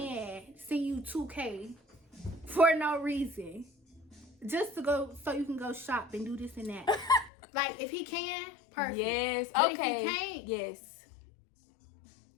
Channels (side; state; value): right; drops out; at 7.3 s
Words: send you $2K for no reason? Just to go, so you can go shop and do this and that. Like, if he can, perfect. Yes, but okay. If he can't, yes.